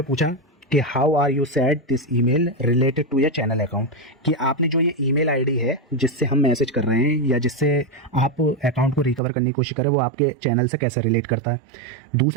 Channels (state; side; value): drops out; left; at 9.2 s